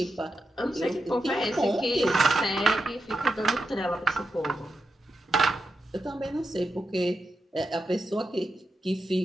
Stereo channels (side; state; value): both; normal; correlation 0.88